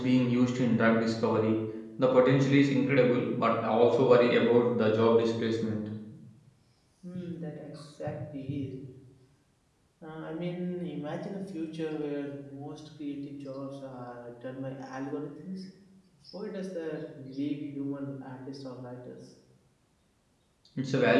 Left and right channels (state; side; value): identical; both; correlation 1.00